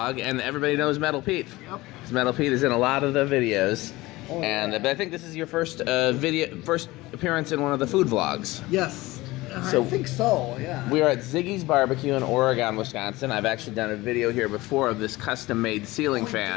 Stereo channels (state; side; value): quieter; right; 19.8 dB